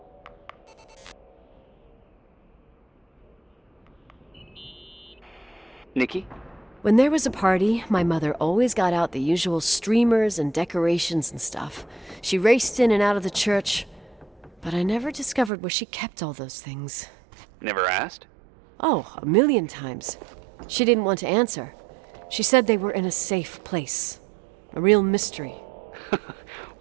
Nikki? When there was a party, my mother always got out the usual streamers and decorations and stuff. She raced in and out of the church, but I never discovered where she kept all those things. Never asked? Oh, 1,000,000 times. She didn't want to answer. She said they were in a safe place. A real mystery.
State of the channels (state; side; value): drops out; left; at 15.5 s